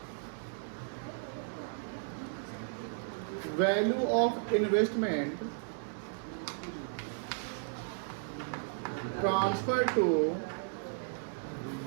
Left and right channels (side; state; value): left; silent; 55 dB below the other